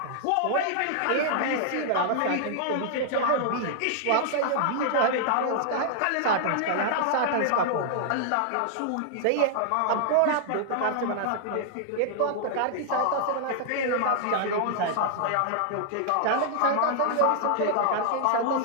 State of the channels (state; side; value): different; both; correlation -0.01